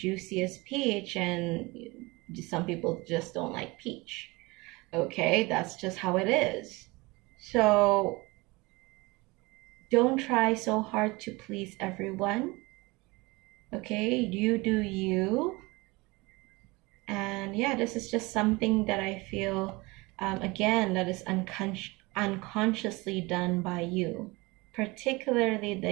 peach, and some people just don't like peach. Okay, that's just how it is. So don't try so hard to please everyone. Okay, you do you. And yeah, this is just something that I feel, again, that is unconsciously done by you, particularly the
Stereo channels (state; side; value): quieter; left; 23.9 dB